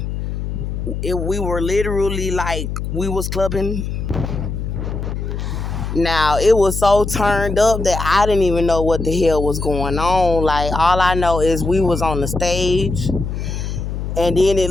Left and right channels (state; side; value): noise; left; hum, 4 dB below the sound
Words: We were literally like, we was clubbing. Now, it was so turned up that I didn't even know what the hell was going on. Like, all I know is we was on the stage, and then it